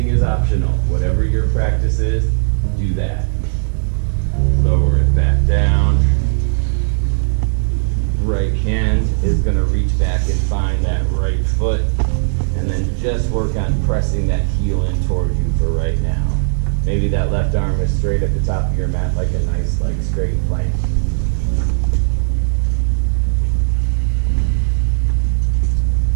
is optional. Whatever your practice is, do that. Lower it back down. Right hand is going to reach back and find that right foot. And then just work on pressing that heel in toward you for right now. Maybe that left arm is straight at the top of your mat like a nice, like straight plank.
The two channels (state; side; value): silent; left; digital silence